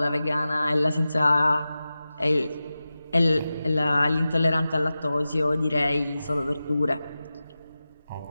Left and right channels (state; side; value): inverted; both; correlation -0.94